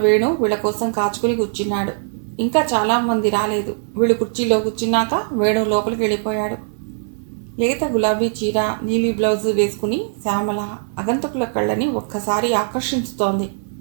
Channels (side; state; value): left; silent; 66 dB below the other